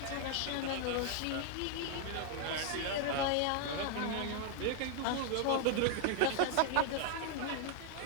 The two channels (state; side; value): different; both; correlation 0.00